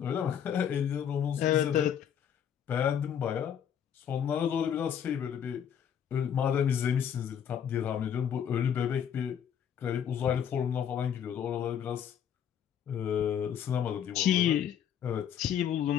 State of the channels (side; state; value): right; quieter; 8.8 dB